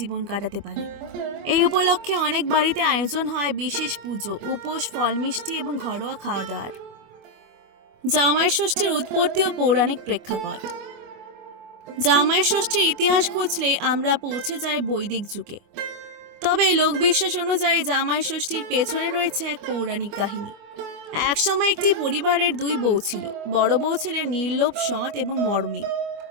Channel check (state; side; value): late; left; 25 ms